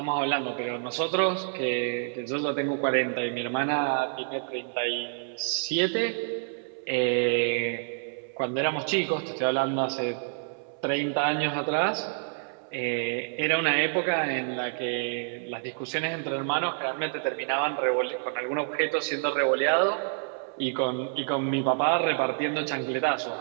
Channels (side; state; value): left; silent; 59 dB below the other